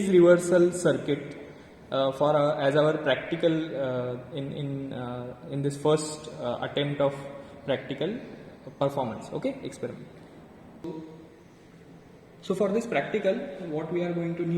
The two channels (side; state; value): both; identical; correlation 1.00